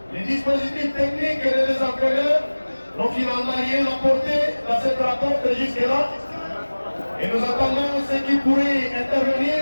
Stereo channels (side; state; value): both; inverted; correlation -1.00